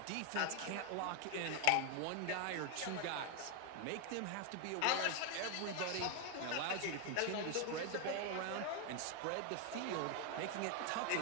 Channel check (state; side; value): different; both; correlation 0.01